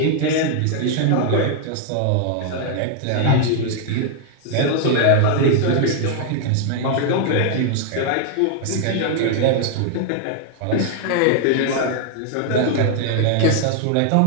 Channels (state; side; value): different; both; correlation 0.00